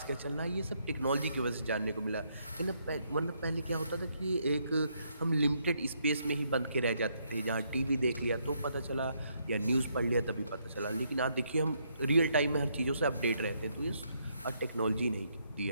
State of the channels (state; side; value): inverted; both; correlation -0.74